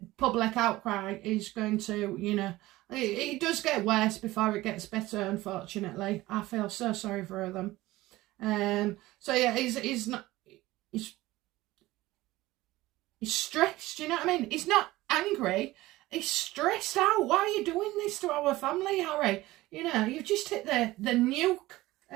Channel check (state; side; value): quieter; left; 18.0 dB